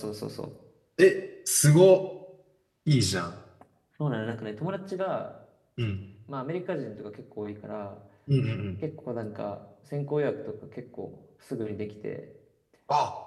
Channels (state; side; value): identical; both; correlation 1.00